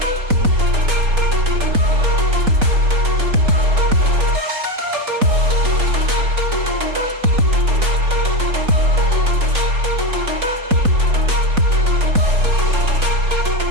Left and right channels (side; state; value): left; late; 4.0 ms